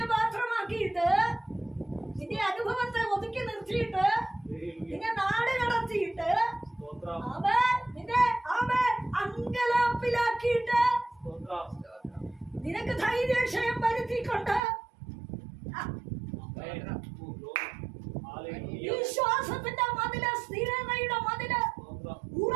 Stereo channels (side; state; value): left; drops out; at 14.6 s